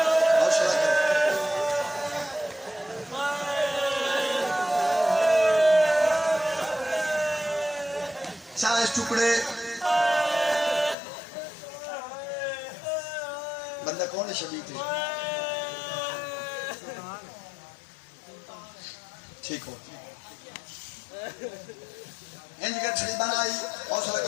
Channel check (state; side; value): drops out; right; at 11.0 s